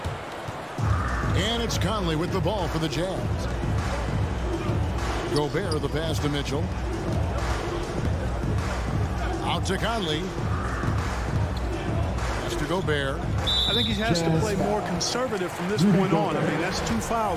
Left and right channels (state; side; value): identical; both; correlation 1.00